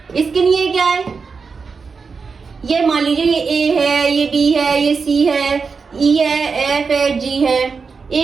इसके लिए क्या है, ये मान लीजिए ये ए है, ये बी है, ये सी है, ई है, एफ है, जी है।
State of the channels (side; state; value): left; quieter; 5.1 dB